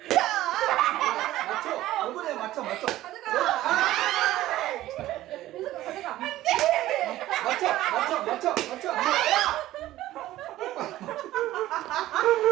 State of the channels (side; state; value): left; quieter; 15.1 dB